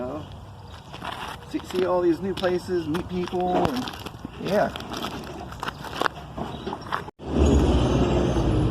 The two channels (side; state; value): both; identical; correlation 1.00